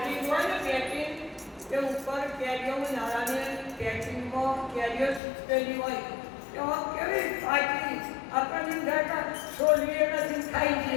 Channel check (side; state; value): right; drops out; at 5.2 s